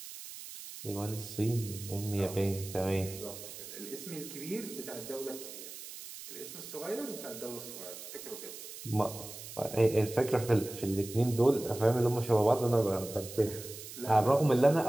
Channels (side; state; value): right; noise; hiss, 12 dB below the sound